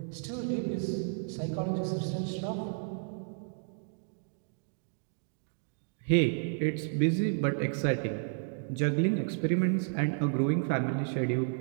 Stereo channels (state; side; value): silent; left; digital silence